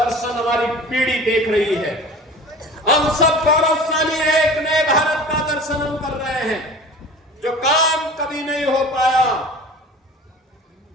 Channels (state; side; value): normal; both; correlation 0.40